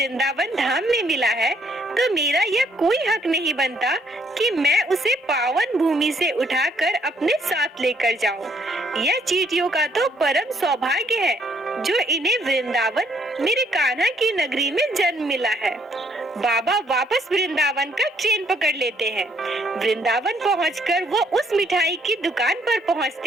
धाम में मिला है, तो मेरा यह कोई हक नहीं बनता कि मैं उसे पावन भूमि से उठाकर अपने साथ लेकर जाऊं। यह चींटियों का तो परम सौभाग्य है जो इन्हें वृंदावन मेरे कान्हा की नगरी में जन्म मिला है। बाबा वापस वृंदावन का ट्रेन पकड़ लेते हैं। वृंदावन पहुंचकर वो उस मिठाई की दुकान पर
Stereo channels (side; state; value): both; normal; correlation 0.68